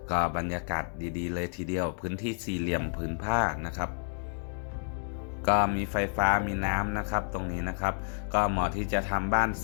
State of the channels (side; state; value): right; silent; 58 dB below the other